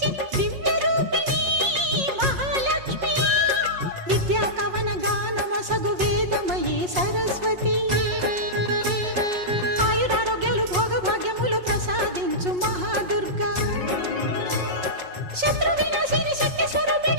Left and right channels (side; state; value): left; late; 5.5 ms